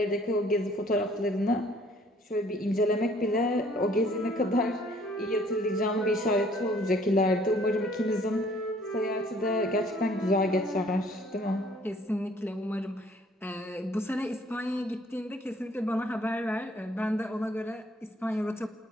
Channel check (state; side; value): normal; both; correlation 0.59